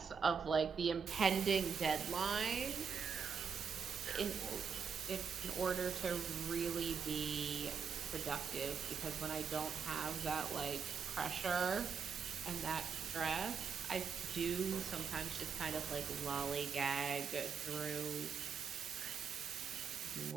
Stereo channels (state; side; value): quieter; left; 6.3 dB